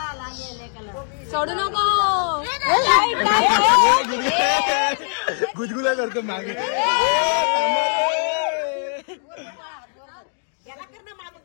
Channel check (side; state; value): right; silent; 59 dB below the other